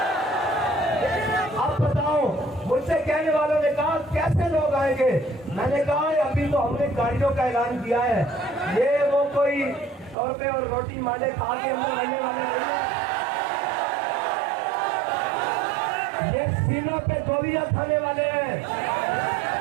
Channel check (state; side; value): drops out; left; at 10.2 s